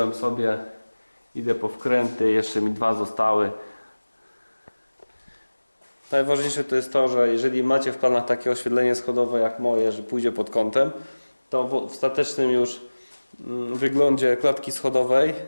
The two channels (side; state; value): both; inverted; correlation -1.00